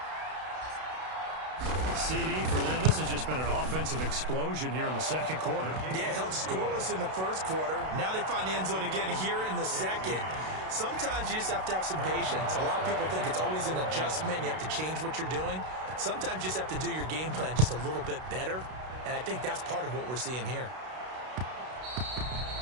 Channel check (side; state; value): left; late; 32 ms